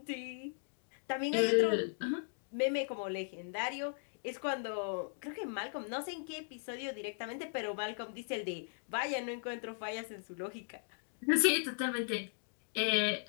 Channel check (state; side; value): silent; right; digital silence